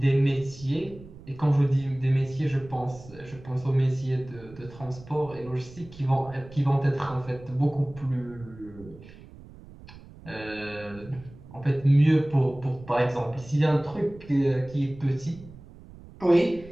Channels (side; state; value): right; noise; rumble, 19 dB below the sound